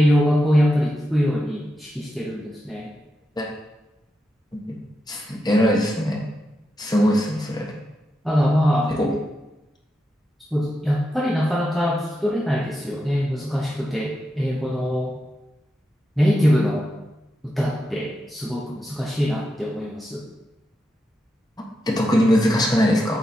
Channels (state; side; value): normal; both; correlation 0.87